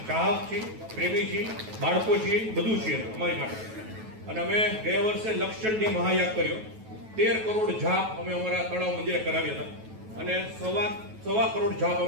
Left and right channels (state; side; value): late; left; 9.2 ms